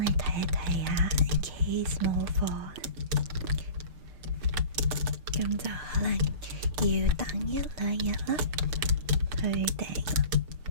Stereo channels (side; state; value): left; late; 6.7 ms